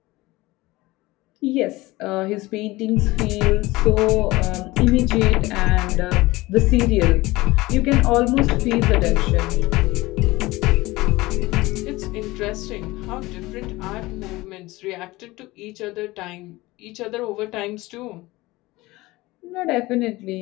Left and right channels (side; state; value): right; quieter; 20.1 dB